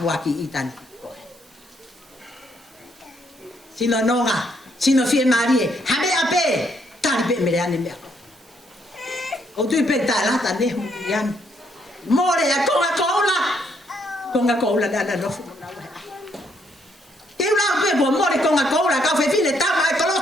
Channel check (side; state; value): right; noise; hiss, 29 dB below the sound